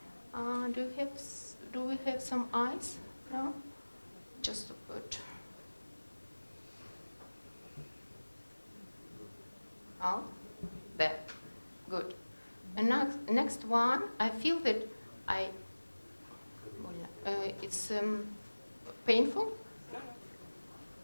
Do we have some ice? No? Just to put. Out. There. Good. And next one, I feel that it's painful.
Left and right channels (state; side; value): inverted; both; correlation -1.00